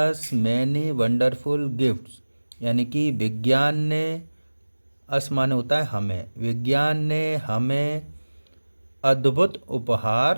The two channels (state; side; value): inverted; both; correlation -1.00